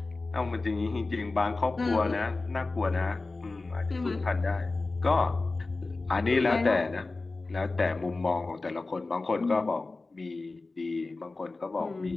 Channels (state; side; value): quieter; right; 3.5 dB